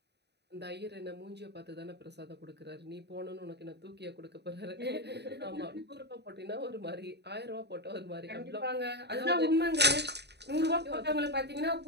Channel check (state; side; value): late; left; 0.49 ms